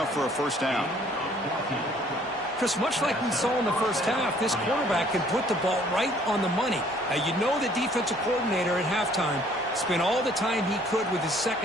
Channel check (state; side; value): normal; both; correlation 0.59